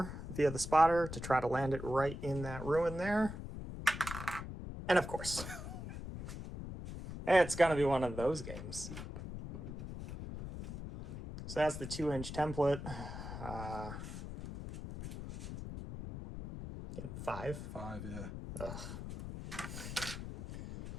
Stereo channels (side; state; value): left; noise; rumble, 8 dB below the sound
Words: via the spotter to try to land it right in that ruin there. And of course, it's gonna be one of those games. So that's the 2-inch template. 5? 5, yeah. Ugh.